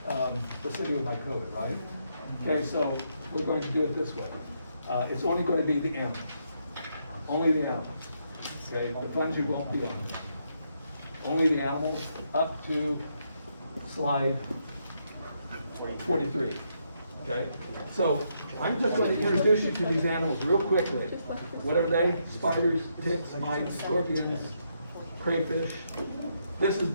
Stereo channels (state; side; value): inverted; both; correlation -0.77